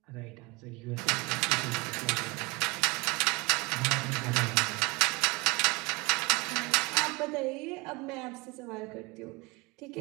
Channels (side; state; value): left; quieter; 26.1 dB